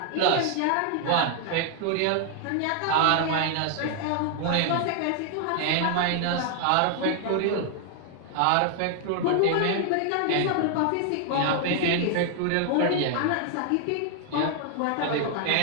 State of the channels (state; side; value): different; both; correlation 0.00